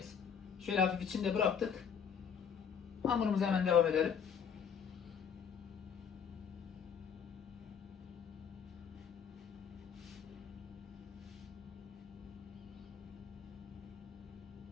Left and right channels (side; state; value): right; quieter; 7.1 dB